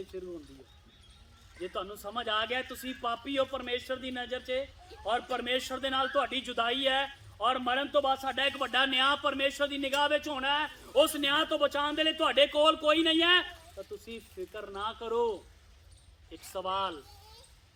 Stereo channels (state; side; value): identical; both; correlation 1.00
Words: ਸ਼ੁਰੂ ਹੁੰਦੀ ਹੈ। ਜੇ ਤੁਹਾਨੂੰ ਸਮਝ ਆ ਗਿਆ ਤੁਸੀਂ ਪਾਪੀ ਹੋ ਪਰਮੇਸ਼ਰ ਦੀ ਨਜ਼ਰ 'ਚ, ਔਰ ਪਰਮੇਸ਼ਰ ਦੇ ਨਾਲ ਤੁਹਾਡੀ ਜੁਦਾਈ ਹੈ, ਔਰ ਮਰਨ ਤੋਂ ਬਾਅਦ ਸਾਡਾ ਇੱਕ ਵੱਡਾ ਨਿਆਂ ਪਰਮੇਸ਼ਰ ਦੀ ਨਿਗਾਹ ਵਿੱਚ ਹੋਣਾ ਹੈ, ਉਸ ਨਿਆਂ ਤੋਂ ਬਚਾਉਣ ਦੇ ਲਈ ਤੁਹਾਡੇ ਕੋਲ ਕੋਈ ਨਹੀਂ ਹੈ, ਤਾਂ ਤੁਸੀਂ ਫਿਕਰ ਨਾ ਕਰੋ। ਇੱਕ ਸਵਾਲ,